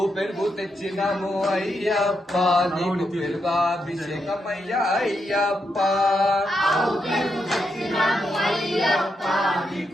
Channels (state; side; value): normal; both; correlation 0.82